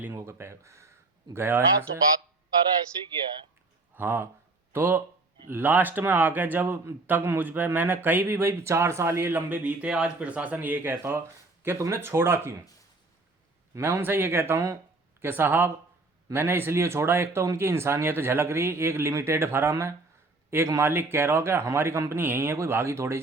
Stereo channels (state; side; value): quieter; left; 3.3 dB